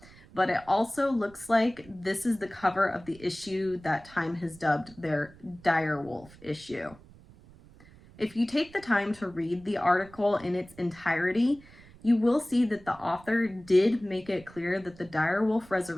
But it also looks like this is the cover of the issue that Time has dubbed their Dire Wolf issue. If you take the time to read the article in its entirety, you will see that the author did make it clear that the dire wolf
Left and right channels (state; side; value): noise; right; rumble, 23 dB below the sound